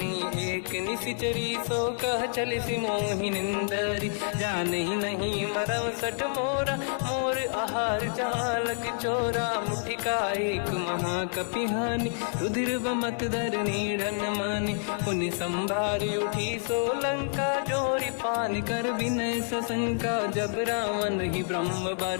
एक निशिचरी, सो कह चले सि मोहि निंदरी। जान ही नहीं मरम सट मोरा, मोर आहार जालक चोरा। मुठिका एक महाकपि हानि, रुधिर बमत धर नीढ़न मानि। पुनि संभारी उठी सो लंका, जोरी पान कर विनय सशंका। जब रावण ही ब्रह्म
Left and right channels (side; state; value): right; silent; 59 dB below the other